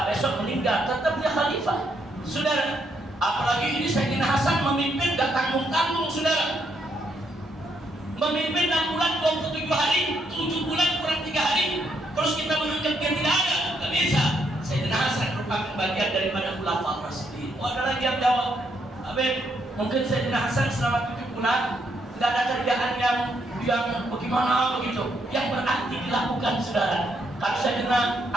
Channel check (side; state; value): both; normal; correlation 0.75